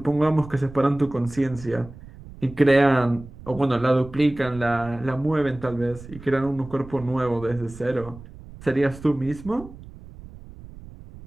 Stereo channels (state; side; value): noise; right; rumble, 17 dB below the sound